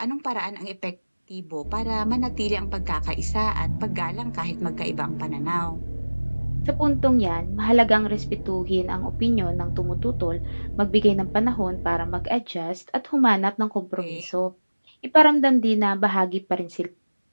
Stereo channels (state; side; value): inverted; both; correlation -1.00